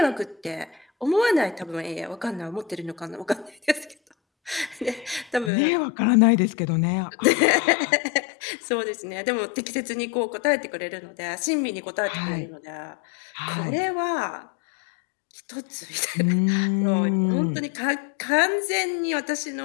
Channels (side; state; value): right; drops out; at 5.5 s